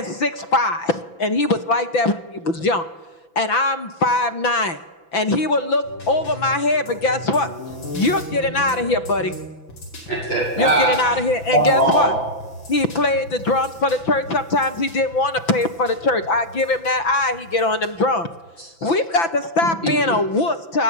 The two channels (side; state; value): right; late; 6.0 ms